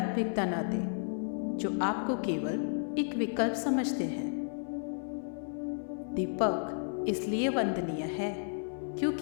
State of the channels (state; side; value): silent; right; 56 dB below the other